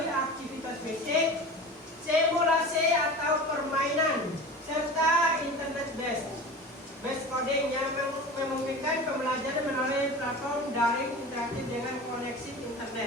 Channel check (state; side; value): normal; both; correlation 0.34